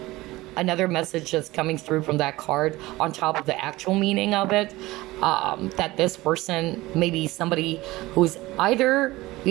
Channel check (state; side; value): quieter; left; 19.1 dB